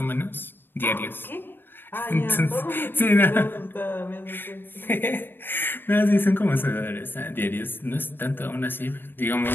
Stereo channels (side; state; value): right; late; 0.098 ms